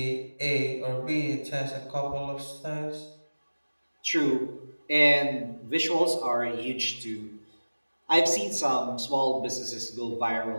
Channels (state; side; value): inverted; both; correlation -1.00